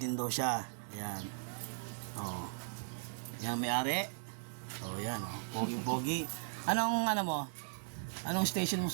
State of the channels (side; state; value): left; silent; digital silence